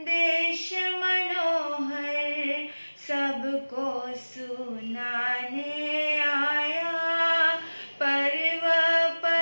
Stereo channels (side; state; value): both; inverted; correlation -1.00